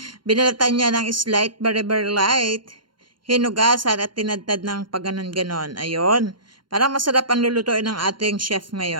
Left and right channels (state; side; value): late; left; 0.72 ms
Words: Binalatan niya ng slight, very light. Hinugasan at tinadtad ng paganon-ganon. Ayun. Parang masarap ang lulutuin ng ating chef